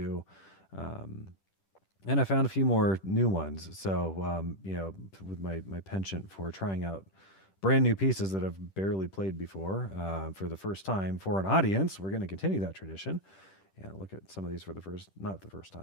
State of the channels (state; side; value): late; right; 10 ms